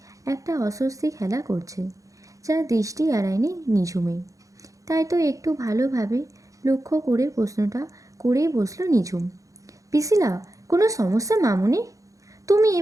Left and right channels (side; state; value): left; late; 0.16 ms